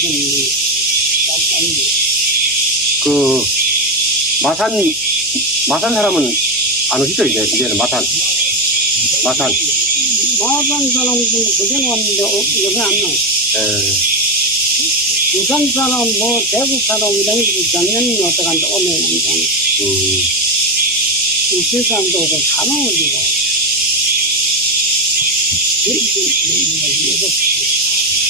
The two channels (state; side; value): noise; left; hum, 26 dB below the sound